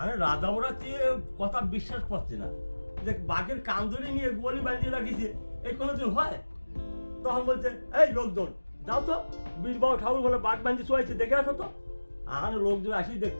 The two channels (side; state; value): both; inverted; correlation -1.00